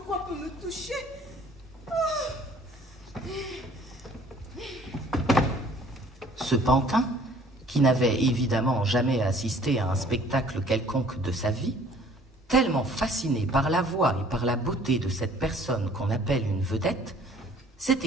quoi peut me toucher. Ce pantin, qui n'avait évidemment jamais assisté à un spectacle quelconque de sa vie, tellement fasciné par la voix et par la beauté de cette personne qu'on appelle une vedette,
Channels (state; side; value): normal; both; correlation 0.55